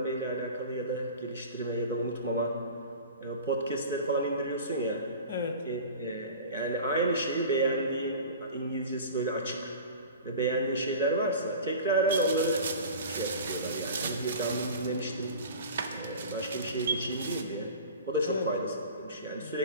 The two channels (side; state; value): both; inverted; correlation -0.37